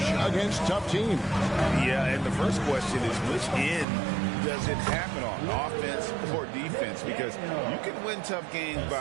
against tough teams. Yeah, and the first question is which end does it happen on, offense or defense? Because you can win tough games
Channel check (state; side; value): drops out; left; at 3.9 s